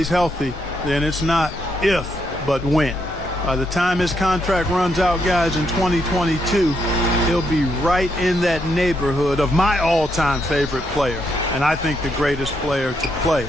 healthy, then it's not if, but when. By the time his contract runs out, guys, in 2022, he'll be right in that neighborhood of my all-time favorite player, and I think the greatest player to play,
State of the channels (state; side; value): normal; both; correlation 0.78